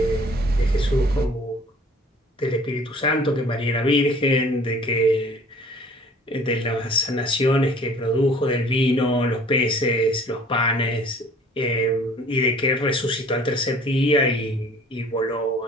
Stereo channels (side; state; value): both; normal; correlation 0.51